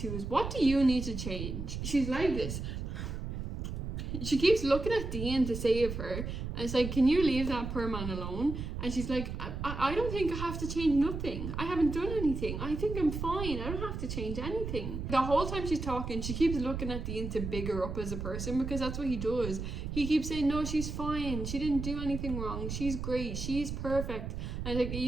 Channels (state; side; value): noise; right; rumble, 5 dB below the sound